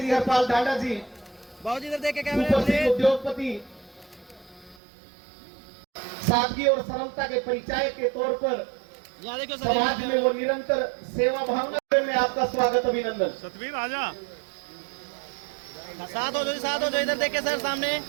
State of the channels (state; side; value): drops out; left; at 4.8 s